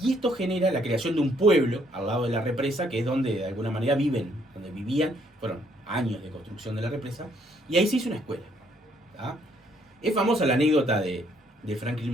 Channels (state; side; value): normal; both; correlation 0.68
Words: Y esto genera la creación de un pueblo al lado de la represa, que es donde de alguna manera donde vivían, fueron años de construcción de la represa, y ahí se hizo una escuela. ¿Tá? Es famosa la anécdota de Franklin